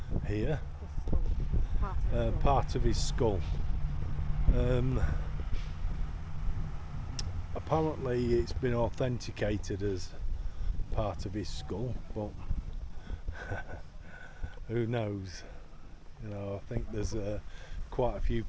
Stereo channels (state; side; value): identical; both; correlation 1.00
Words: here, part of his skull. Apparently it's been authenticated as part of his skull, but who knows? You know, I think there's quite a few